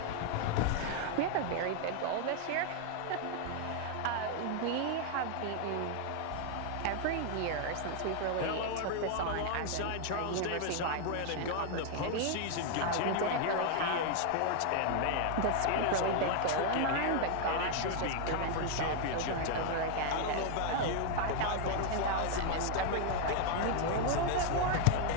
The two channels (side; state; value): both; different; correlation 0.00